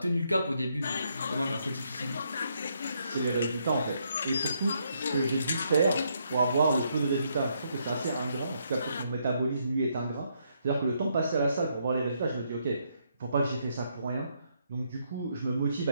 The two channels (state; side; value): inverted; both; correlation -0.75